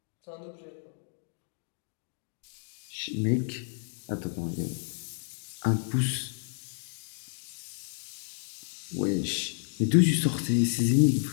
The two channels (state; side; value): silent; right; digital silence